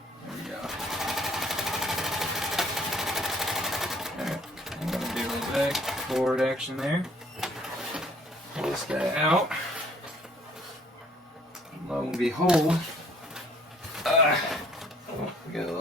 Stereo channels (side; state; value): both; normal; correlation 0.59